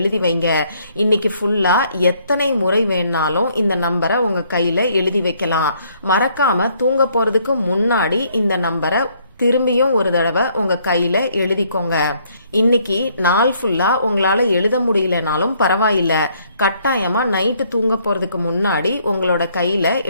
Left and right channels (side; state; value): both; inverted; correlation -0.67